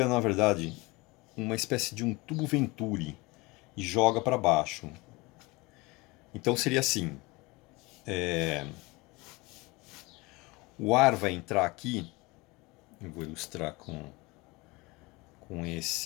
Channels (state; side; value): quieter; right; 24.0 dB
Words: na verdade uma espécie de um tubo Venturi e joga para baixo. Então seria assim: o ar vai entrar aqui, eu vou ilustrar com